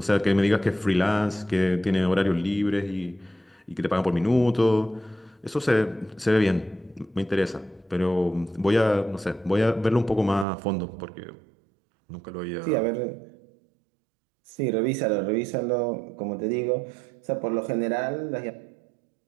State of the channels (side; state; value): left; drops out; at 10.5 s